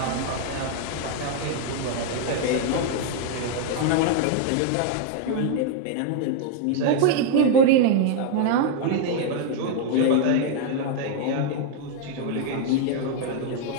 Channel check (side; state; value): both; different; correlation 0.00